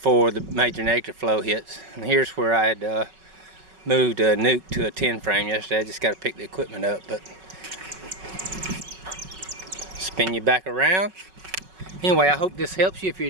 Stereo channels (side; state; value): left; late; 5.4 ms